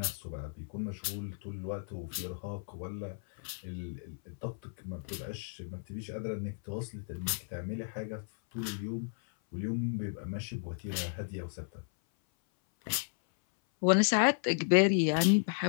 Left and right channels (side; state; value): right; silent; 55 dB below the other